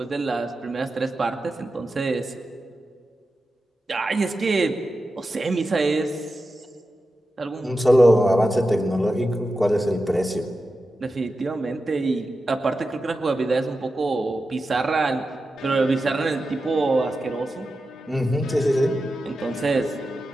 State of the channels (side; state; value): both; normal; correlation 0.91